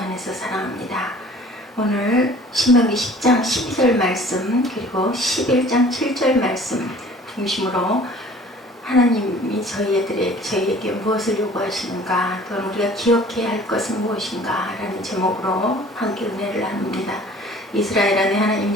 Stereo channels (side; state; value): both; normal; correlation 0.49